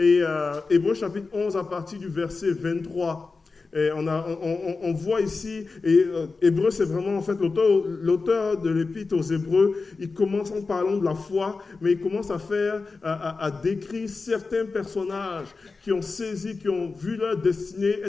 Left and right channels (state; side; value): quieter; right; 4.1 dB